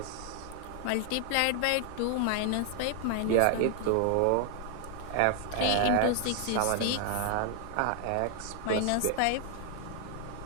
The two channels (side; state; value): both; different; correlation 0.00